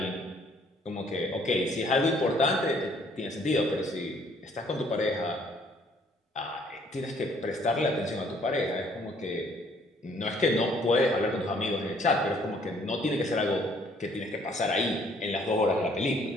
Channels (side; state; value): both; normal; correlation 0.62